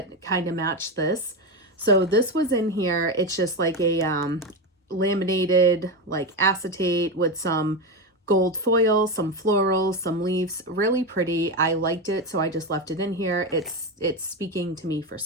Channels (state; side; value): normal; both; correlation 0.15